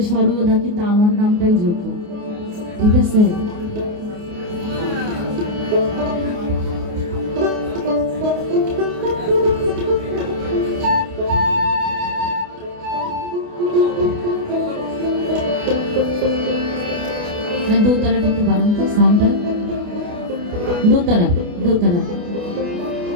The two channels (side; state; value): left; late; 29 ms